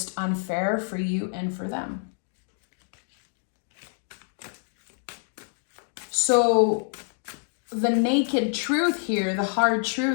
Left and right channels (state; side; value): silent; right; 60 dB below the other